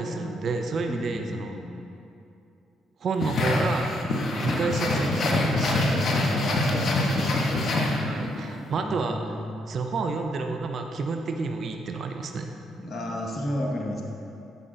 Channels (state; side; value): normal; both; correlation 0.74